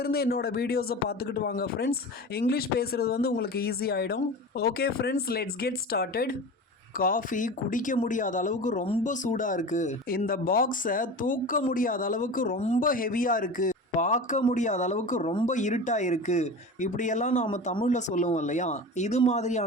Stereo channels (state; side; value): normal; both; correlation 0.32